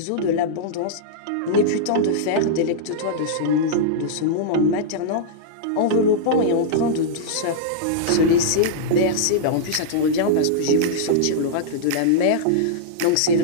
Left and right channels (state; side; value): different; both; correlation -0.02